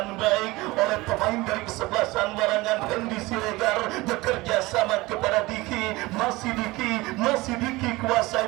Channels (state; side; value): quieter; left; 21.2 dB